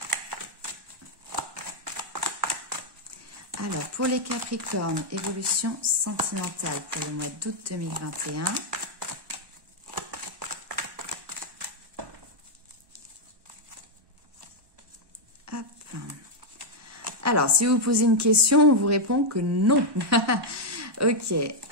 Alors, pour les Capricornes, évolution sentimentale pour le mois d'août 2021. Alors, si vous posez une question, on vous répond que non. Ok,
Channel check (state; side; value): late; left; 1.2 ms